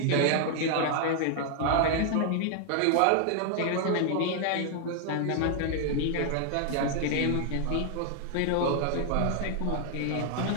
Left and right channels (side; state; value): both; different; correlation 0.00